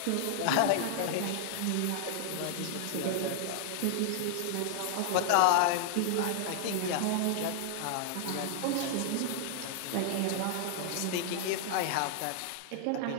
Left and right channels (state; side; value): different; both; correlation -0.01